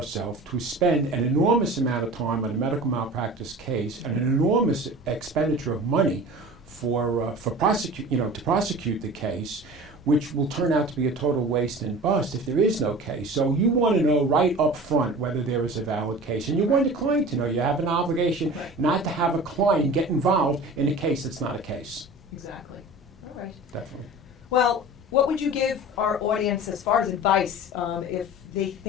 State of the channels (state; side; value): normal; both; correlation 0.38